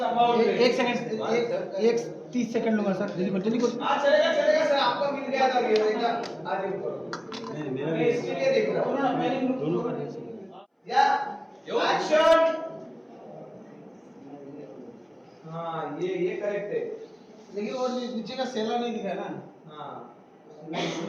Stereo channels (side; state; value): both; identical; correlation 1.00